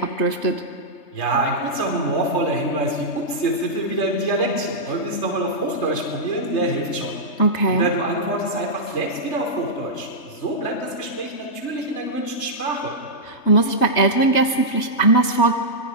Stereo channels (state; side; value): late; right; 3.3 ms